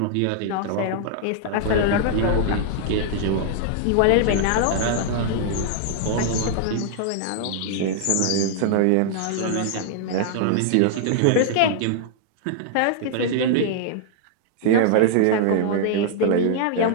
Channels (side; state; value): both; different; correlation -0.01